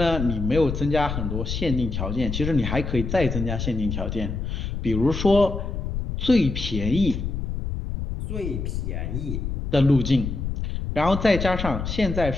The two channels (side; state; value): left; noise; rumble, 4 dB below the sound